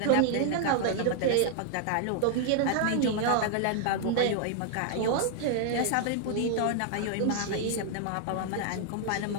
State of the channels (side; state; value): both; different; correlation 0.00